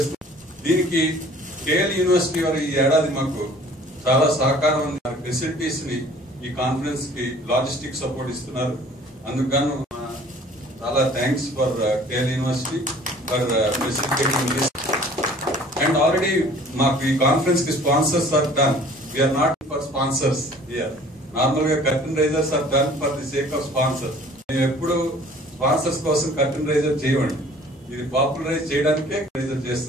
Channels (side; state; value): both; normal; correlation 0.51